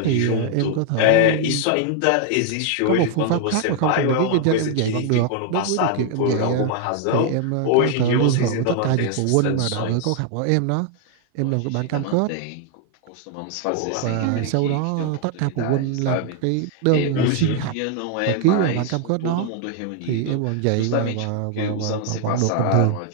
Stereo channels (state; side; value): different; both; correlation 0.00